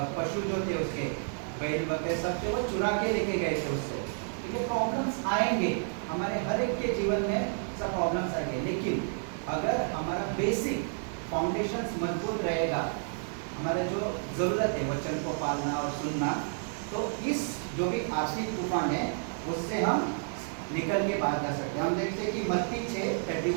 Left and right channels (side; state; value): left; silent; 57 dB below the other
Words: पशु जो थे, उसके बैल बकरे सब थे, वो चुरा के लेके गए थे उससे। ये प्रॉब्लम्स आएंगे हमारे हर एक के जीवन में, सब प्रॉब्लम्स आएंगे। लेकिन अगर हमारा बेसिक फाउंडेशंस मजबूत रहेगा, हमारा जो ज़रूरत है वचन को पालना और सुनना, तो इस जो भी आर्थिक तूफान है उससे हम निकल के बाहर जा सकते हैं। हम देखते हैं कि मत्ती